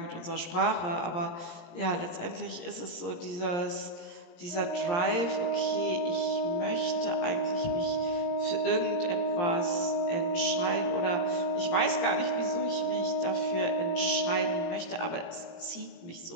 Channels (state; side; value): late; right; 17 ms